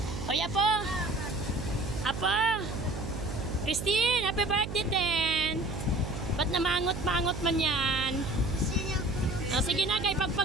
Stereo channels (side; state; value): right; noise; hum, 7 dB below the sound